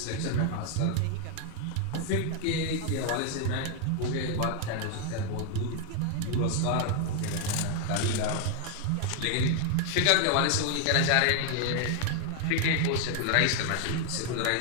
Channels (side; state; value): both; different; correlation 0.00